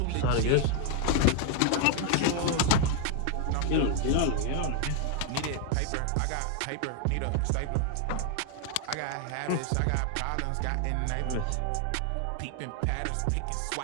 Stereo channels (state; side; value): different; both; correlation 0.00